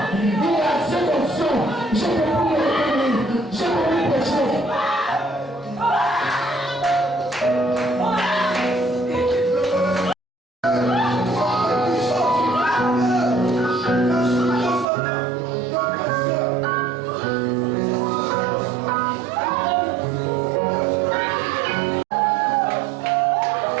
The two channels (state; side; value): drops out; left; at 14.9 s